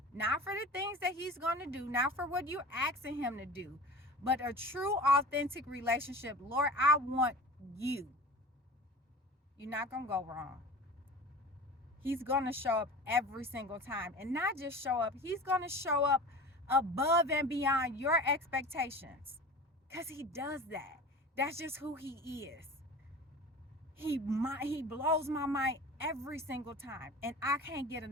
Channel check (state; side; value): normal; both; correlation 0.37